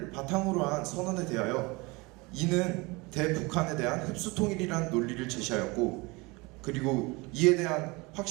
바탕으로 한 선언에 대하여 이는 대북한에 대한 흡수 통일이라는 논리를 제시하였고, 그리고 이에 대한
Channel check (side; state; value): left; quieter; 25.4 dB